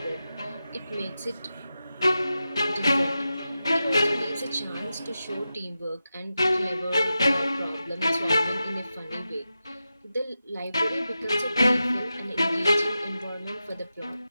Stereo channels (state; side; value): inverted; both; correlation -0.91